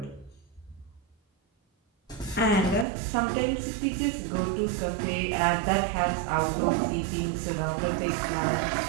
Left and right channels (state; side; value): drops out; left; at 2.9 s